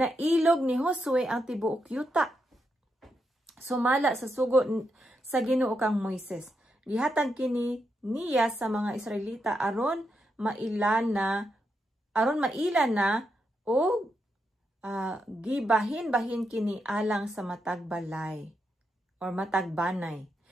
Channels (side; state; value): both; normal; correlation 0.83